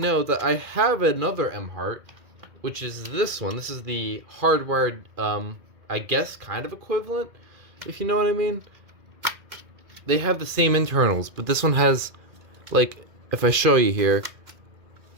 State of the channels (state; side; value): late; left; 2.1 ms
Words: that I have another Emhart, which is this one. This is the hardwired, I guess, kind of equivalent, if you know what I mean. They have the same internals, but this one has, like, if I show you here,